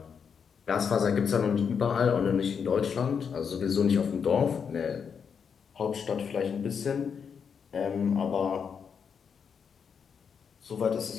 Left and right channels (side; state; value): right; quieter; 6.7 dB